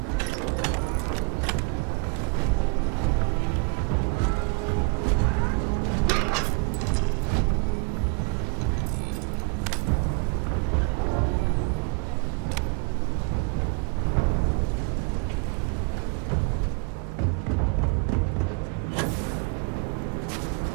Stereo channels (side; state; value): left; quieter; 35.2 dB